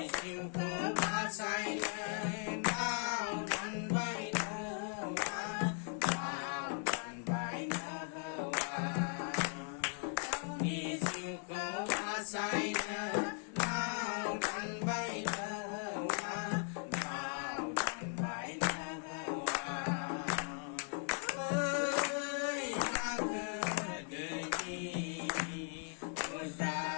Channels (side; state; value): right; silent; 52 dB below the other